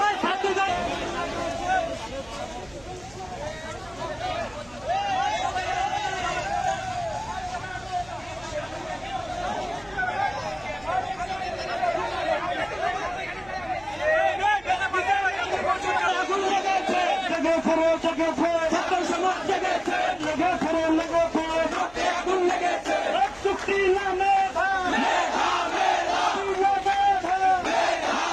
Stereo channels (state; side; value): noise; right; hum, 24 dB below the sound